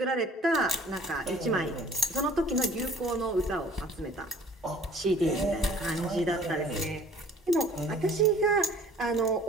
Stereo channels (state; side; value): normal; both; correlation 0.51